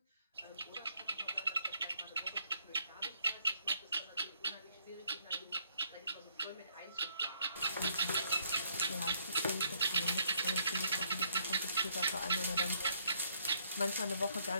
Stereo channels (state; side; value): inverted; both; correlation -0.68